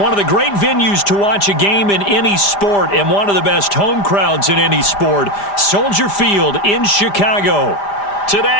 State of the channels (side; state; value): right; late; 5.0 ms